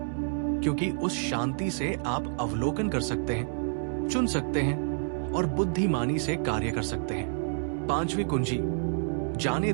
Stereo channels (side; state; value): left; silent; digital silence